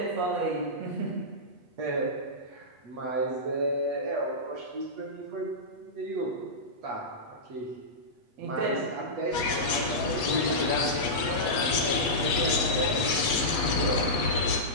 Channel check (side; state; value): left; late; 8.3 ms